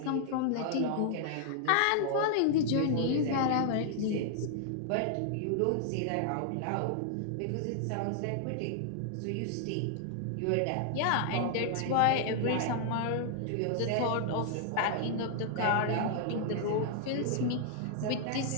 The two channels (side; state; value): both; different; correlation -0.01